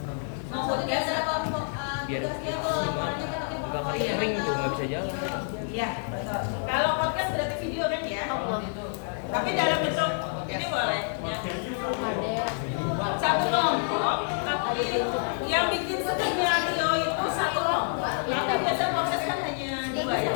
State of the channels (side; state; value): right; silent; 59 dB below the other